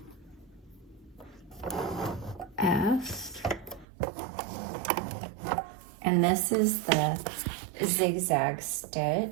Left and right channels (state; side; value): drops out; left; at 3.9 s